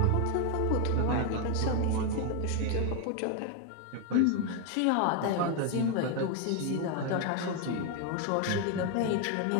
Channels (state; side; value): different; both; correlation 0.01